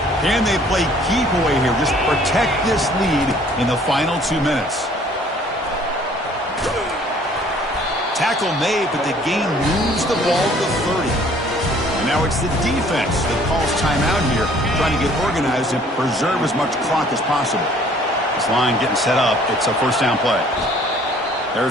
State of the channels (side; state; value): both; normal; correlation 0.56